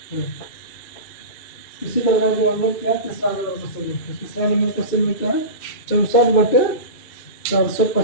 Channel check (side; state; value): right; late; 2.8 ms